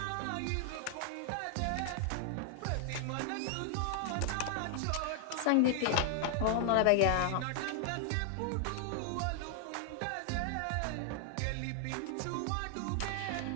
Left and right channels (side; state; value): both; different; correlation 0.00